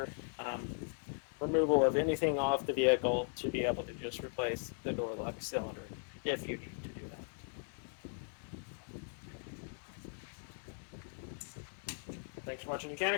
removal of anything off the vehicle to be able to just replace the door lock cylinder if you need to do that. Thanks for watching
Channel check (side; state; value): right; silent; 52 dB below the other